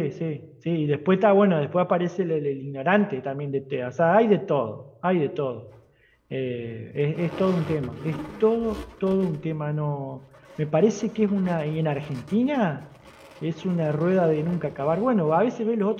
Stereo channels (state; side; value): identical; both; correlation 1.00